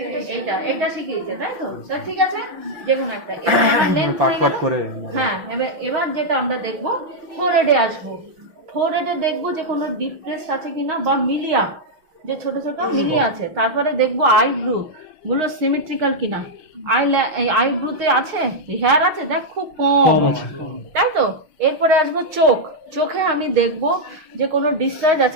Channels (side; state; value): left; late; 6.0 ms